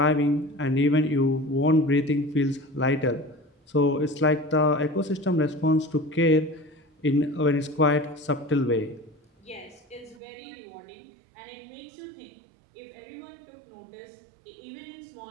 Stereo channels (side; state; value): left; drops out; at 10.2 s